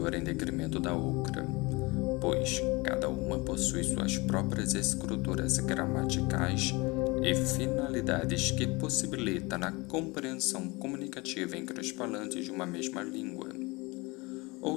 em detrimento da outra, pois cada uma possui suas próprias estruturas gramaticais e finalidades que possibilitam a compreensão comunicativa entre os falantes de uma mesma língua.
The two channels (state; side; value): quieter; right; 24.9 dB